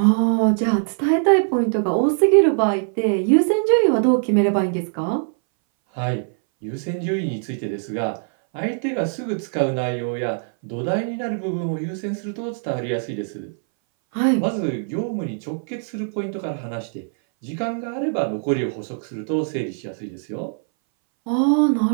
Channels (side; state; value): left; silent; 61 dB below the other